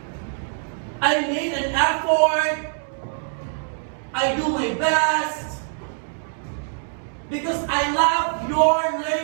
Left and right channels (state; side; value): silent; left; digital silence